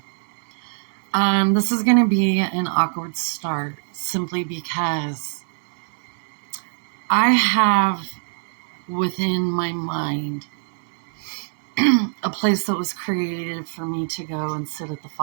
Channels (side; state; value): left; silent; 63 dB below the other